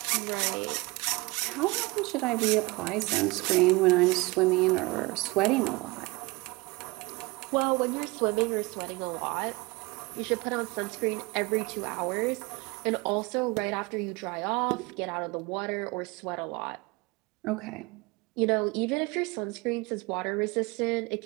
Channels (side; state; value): left; quieter; 24.0 dB